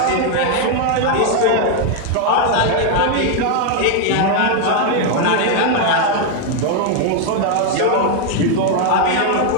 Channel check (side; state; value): both; different; correlation 0.00